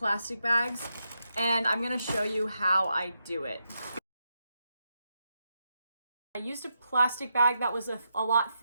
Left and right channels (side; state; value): both; inverted; correlation -0.84